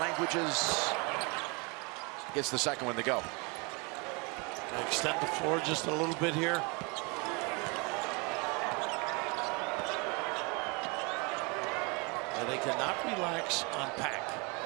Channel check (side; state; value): left; quieter; 30.3 dB